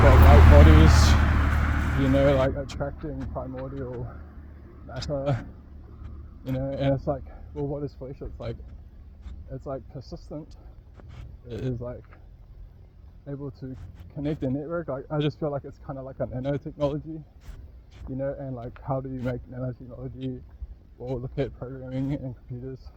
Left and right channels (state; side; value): identical; both; correlation 1.00